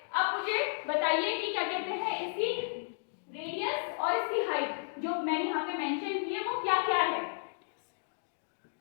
अब मुझे बताइए कि क्या कहते हैं, इसकी रेडियस और इसकी हाइट जो मैंने यहाँ पे मेंशन की है वो क्या क्या है।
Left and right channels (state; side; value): silent; right; digital silence